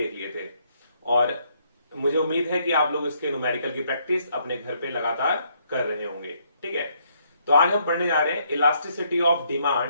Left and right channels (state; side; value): inverted; both; correlation -0.71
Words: लिए थे और मुझे उम्मीद है कि आप लोग इसके न्यूमेरिकल की प्रैक्टिस अपने घर पे लगातार कर रहे होंगे। ठीक है, तो आज हम पढ़ने जा रहे हैं इलास्टिसिटी ऑफ